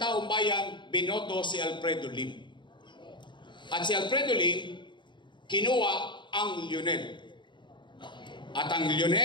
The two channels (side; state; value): right; late; 0.23 ms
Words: bayan, binoto si Alfredo Lim. At si Alfredo Lim, kinuha ang Lionel. At ang